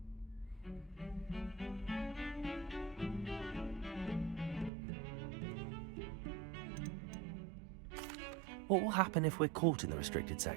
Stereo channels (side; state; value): left; drops out; at 4.7 s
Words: What will happen if we're caught in the restricted